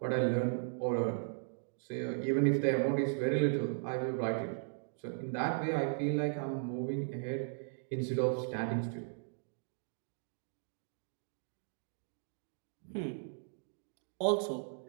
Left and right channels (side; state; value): left; silent; digital silence